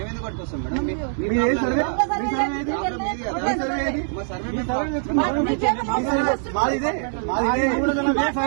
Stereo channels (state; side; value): silent; left; digital silence